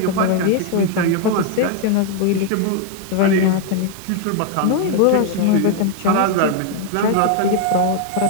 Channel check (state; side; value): different; both; correlation 0.00